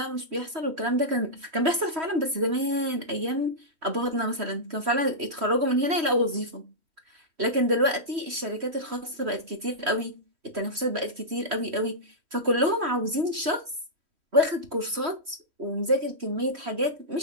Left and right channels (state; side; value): late; left; 3.1 ms